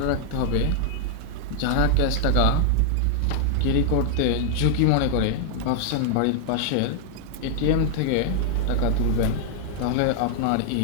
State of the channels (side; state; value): both; different; correlation -0.01